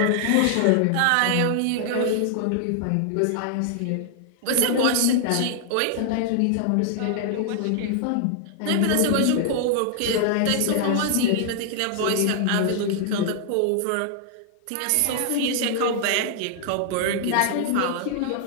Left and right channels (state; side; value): different; both; correlation -0.01